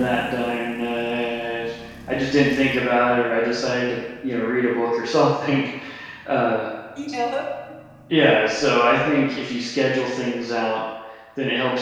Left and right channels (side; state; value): both; identical; correlation 1.00